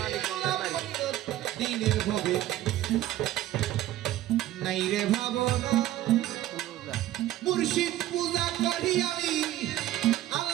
দিনের ভবে নাই রে ভাবনা, মুর্শিদ পূজা করি আমি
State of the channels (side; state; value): left; quieter; 14.0 dB